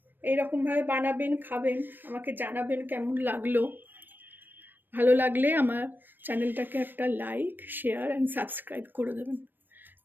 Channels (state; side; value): late; left; 0.093 ms